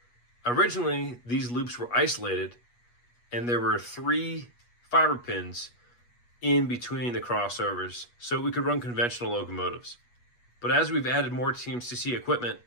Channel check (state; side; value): late; right; 8.3 ms